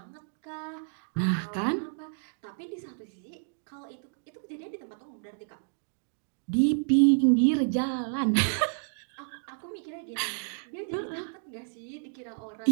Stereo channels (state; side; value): silent; left; digital silence